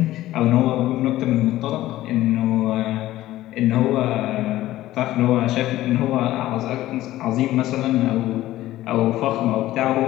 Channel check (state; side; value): quieter; right; 15.3 dB